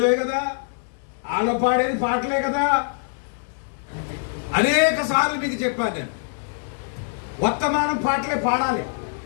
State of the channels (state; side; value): silent; right; digital silence